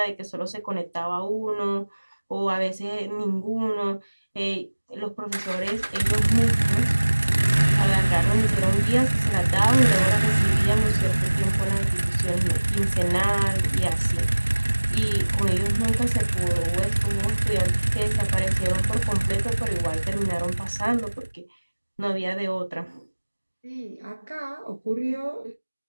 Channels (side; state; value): both; inverted; correlation -1.00